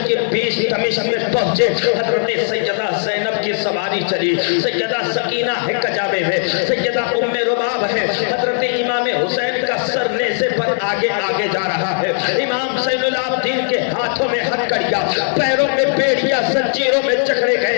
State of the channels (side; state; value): right; silent; digital silence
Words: یہ بیچ دمشق میں پہنچے, حضرت سیدہ زینب کی سواری چلی, سیدہ سکینہ ہے کجاوے میں, سیدہ ام رباب ہے, حضرت امام حسین کا سر نیزے پر آگے آگے جا رہا ہے, امام زین العابدین کے ہاتھوں میں ہتھکڑیاں, پیروں میں بیڑیاں زنجیروں میں جکڑے